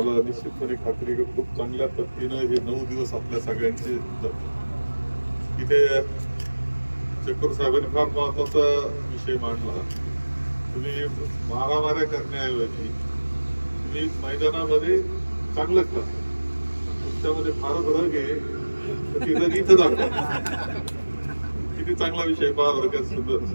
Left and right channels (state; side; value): inverted; both; correlation -1.00